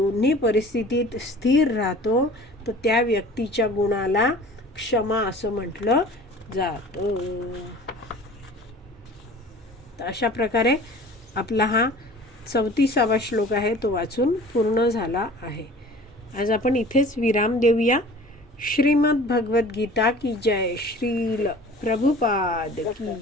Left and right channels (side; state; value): both; normal; correlation 0.45